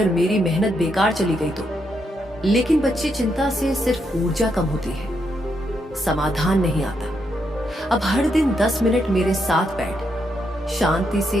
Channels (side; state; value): both; normal; correlation 0.79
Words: मेरी मेहनत बेकार चली गई तो। लेकिन बच्चे, चिंता से सिर्फ ऊर्जा कम होती है, समाधान नहीं आता। अब हर दिन 10 मिनट मेरे साथ बैठ, शांति से